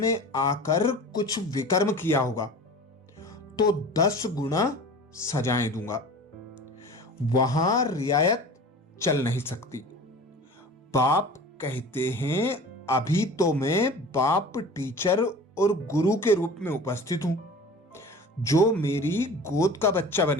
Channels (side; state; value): both; normal; correlation 0.39